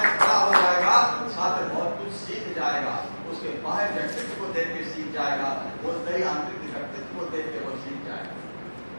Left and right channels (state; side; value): inverted; both; correlation -1.00